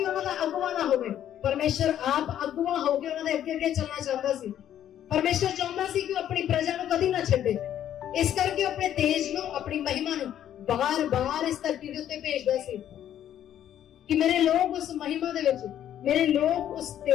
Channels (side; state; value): right; quieter; 10.8 dB